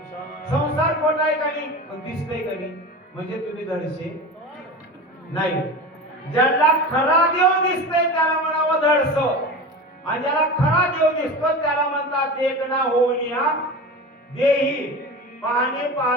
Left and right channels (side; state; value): both; normal; correlation 0.29